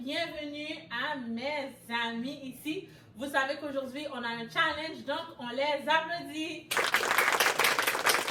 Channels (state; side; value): identical; both; correlation 1.00